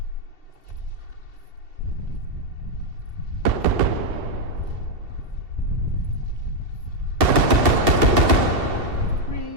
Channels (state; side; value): late; left; 2.7 ms